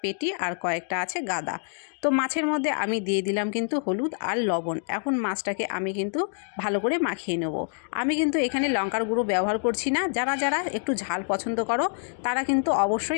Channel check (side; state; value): right; silent; 61 dB below the other